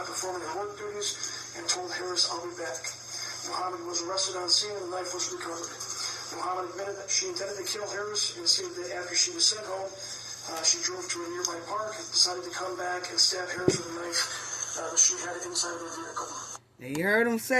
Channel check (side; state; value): both; identical; correlation 1.00